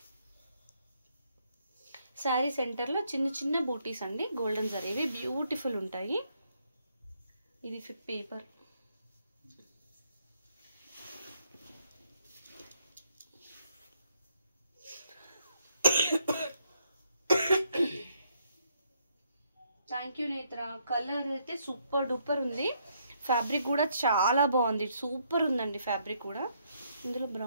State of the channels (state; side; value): inverted; both; correlation -0.73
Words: శారీ సెంటర్లో చిన్న చిన్న బూటీస్ అండి, గోల్డెన్ జరీవి బ్యూటిఫుల్ ఉంటాయి. ఇది పేపర్. థ్యాంక్ యూ నేత్ర. కలర్ అయితే సూపర్ డూపర్ ఉంది. ఫ్యాబ్రిక్ కూడా చాలా బాగుంది, సూపర్ ఉందండి ఫ్యాబ్రిక్ కూడా. ఇందులో